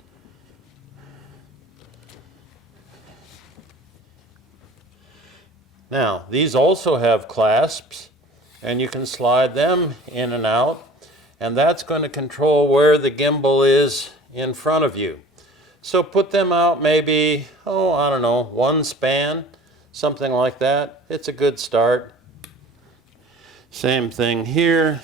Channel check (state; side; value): normal; both; correlation 0.45